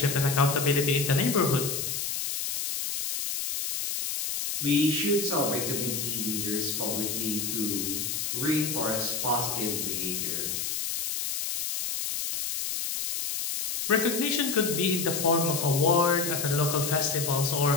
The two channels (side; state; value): left; noise; hiss, 2 dB below the sound